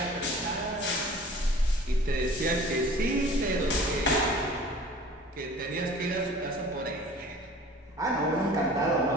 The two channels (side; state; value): both; normal; correlation 0.46